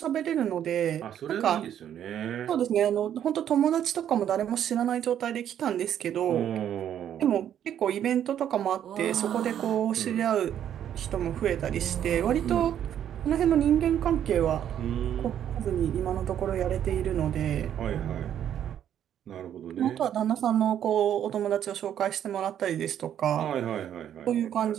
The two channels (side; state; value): left; quieter; 10.1 dB